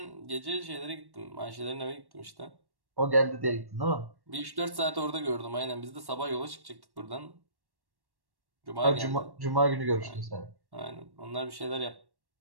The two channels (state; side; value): late; left; 1.1 ms